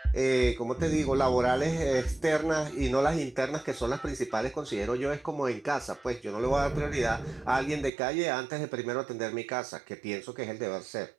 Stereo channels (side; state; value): left; drops out; at 7.9 s